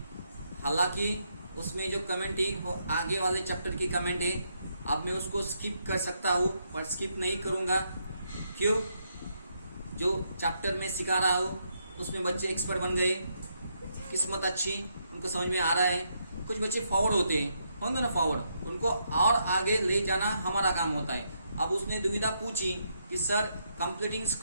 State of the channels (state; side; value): inverted; both; correlation -0.77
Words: हालांकि उसमें जो कमेंट थी वो आगे वाले चैप्टर की कमेंट है। अब मैं उसको स्किप कर सकता हूँ, पर स्किप नहीं करूंगा। क्यों? जो चैप्टर में सिखा रहा हूँ उसमें बच्चे एक्सपर्ट बन गए, किस्मत अच्छी, उनको समझ में आ रहा है। कुछ बच्चे फॉरवर्ड होंगे ना फॉरवर्ड, उनको और आगे ले जाना हमारा काम होता है। अब उसने दुविधा पूछी कि सर कंप्लीटिंग